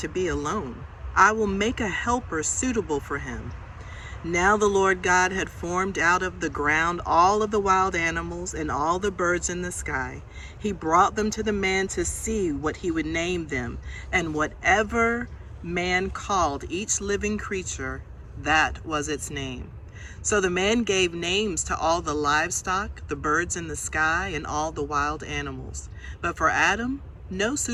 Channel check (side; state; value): both; identical; correlation 1.00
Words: be alone. I will make a helper suitable for him." Now the Lord God had formed out of the ground all of the wild animals and all the birds in the sky. He brought them to the man to see what he would name them, and whatever man called each living creature, that was its name. So the man gave names to all the livestock, the birds in the sky, and all the wild animals. But for Adam, no